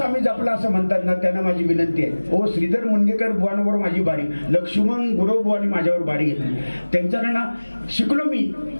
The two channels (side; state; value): both; inverted; correlation -1.00